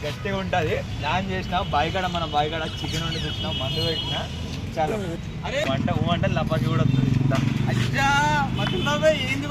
గట్టిగా ఉంటుంది. ప్లాన్ చేసిన బాయిగడ, మన బాయిగడ చికెన్ వండి తెచ్చినా, మందు పెట్టినా. చాలా వంట లపాకి కూడా వస్తుంది. ఏంది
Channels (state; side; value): identical; both; correlation 1.00